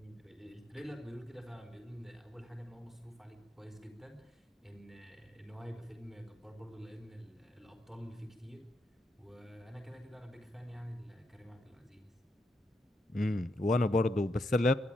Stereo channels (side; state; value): both; normal; correlation 0.80